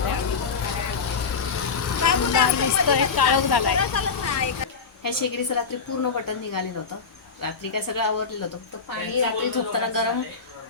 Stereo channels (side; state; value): right; quieter; 5.3 dB